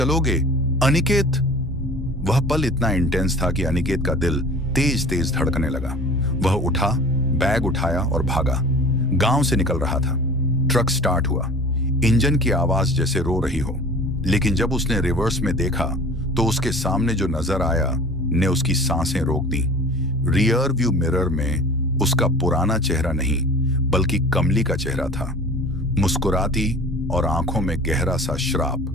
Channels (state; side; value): normal; both; correlation 0.42